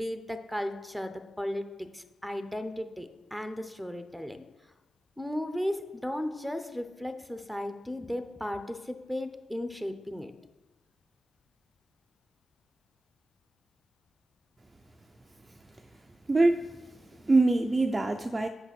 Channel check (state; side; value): normal; both; correlation 0.96